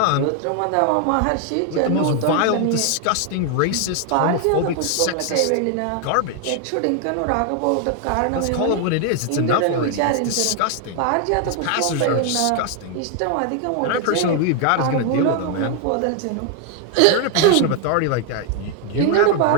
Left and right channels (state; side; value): different; both; correlation 0.00